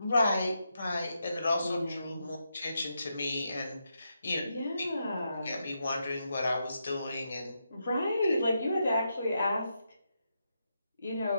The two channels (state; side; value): inverted; both; correlation -0.84